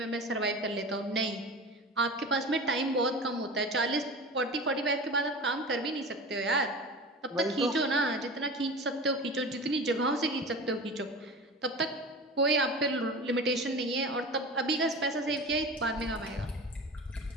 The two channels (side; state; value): both; normal; correlation 0.32